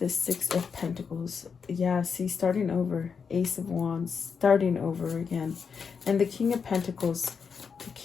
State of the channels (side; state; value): right; quieter; 6.0 dB